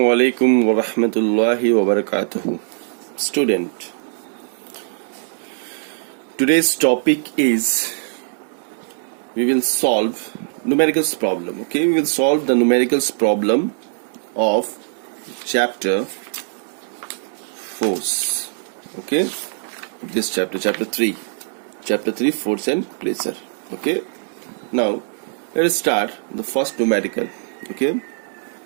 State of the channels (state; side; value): silent; left; digital silence